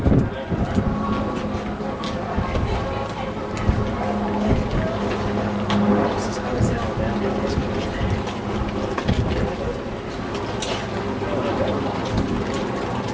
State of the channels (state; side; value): identical; both; correlation 1.00